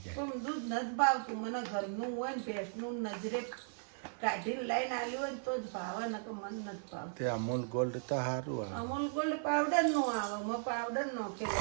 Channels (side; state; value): left; silent; 53 dB below the other